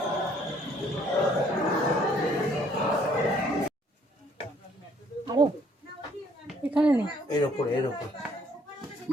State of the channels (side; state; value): both; normal; correlation 0.63